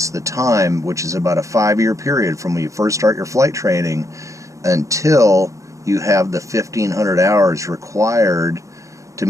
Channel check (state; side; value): late; left; 0.15 ms